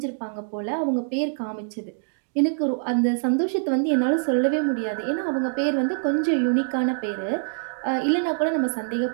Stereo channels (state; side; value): silent; left; digital silence